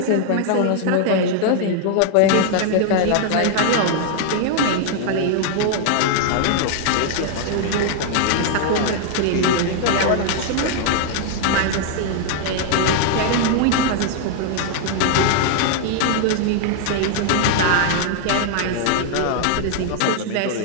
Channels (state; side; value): different; both; correlation 0.00